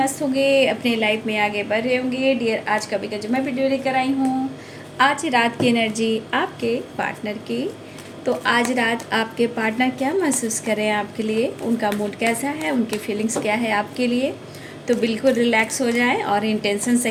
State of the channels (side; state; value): both; identical; correlation 1.00